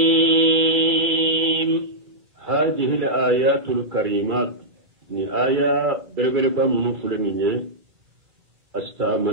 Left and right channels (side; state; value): left; late; 2.3 ms